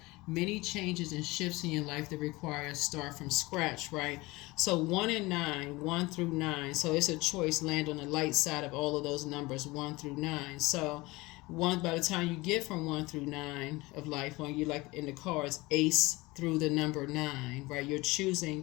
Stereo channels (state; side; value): quieter; right; 21.9 dB